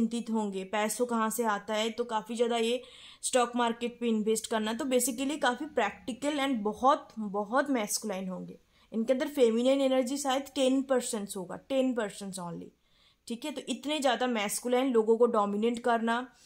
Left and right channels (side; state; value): both; identical; correlation 1.00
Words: होंगे, पैसों कहाँ से आता है, तो काफी ज्यादा ये स्टॉक मार्केट पे इन्वेस्ट करना। तो बेसिकली काफी प्रैक्टिकल एंड बहुत बहुत मैस्कुलाइन होंगे, इनके अंदर फेमिनिन एनर्जी शायद 10% होगा, 10% ओनली। ठीक है, तो इतने ज्यादा मैस्कुलाइन, लोगों को डोमिनेट करना,